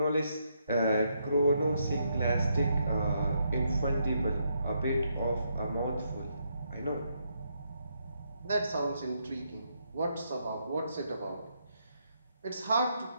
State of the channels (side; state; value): both; inverted; correlation -0.77